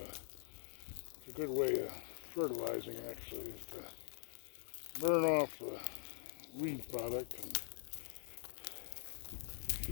a good way of fertilizing, actually, is to burn off the weed product. And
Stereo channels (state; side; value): silent; right; digital silence